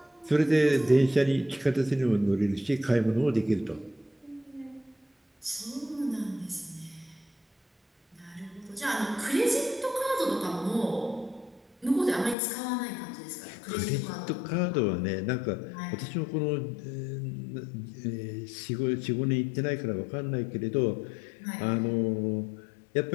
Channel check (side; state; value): right; drops out; at 12.4 s